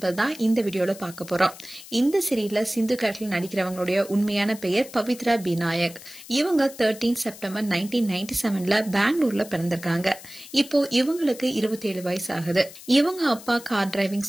இந்த வீடியோல பார்க்க போறோம். இந்த சீரியல்ல சிந்து கேரக்டர்ல நடிக்கிறவங்களுடைய உண்மையான பெயர் பவித்ரா பிநாயக். இவங்க 13 செப்டம்பர் 1997ல பெங்களூர்ல பிறந்திருக்காங்க. இப்போ இவங்களுக்கு 27 வயசு ஆகுது. இவங்க அப்பா கார் டிரைவிங்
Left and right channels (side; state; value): left; noise; hiss, 17 dB below the sound